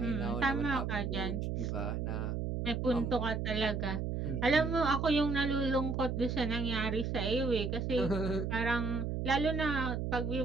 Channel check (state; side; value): noise; right; hum, 1 dB below the sound